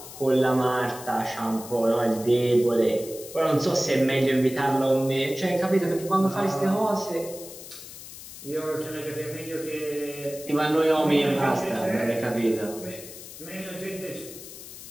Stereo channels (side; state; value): left; noise; hiss, 14 dB below the sound